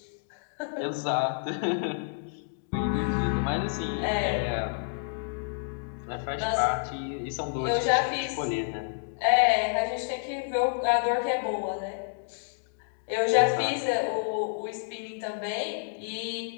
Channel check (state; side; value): silent; right; digital silence